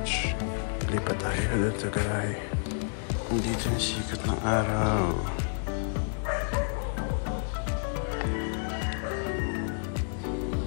Lipat tayo doon sa garage. Dito yung sikat ng araw.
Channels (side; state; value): right; silent; digital silence